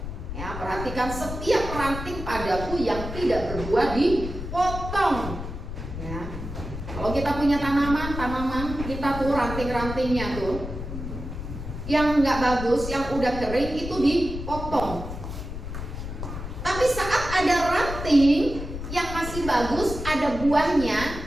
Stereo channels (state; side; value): noise; left; rumble, 7 dB below the sound